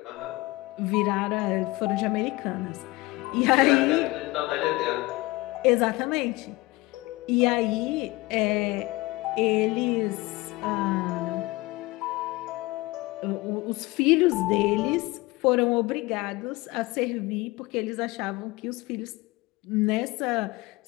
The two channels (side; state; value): right; quieter; 21.5 dB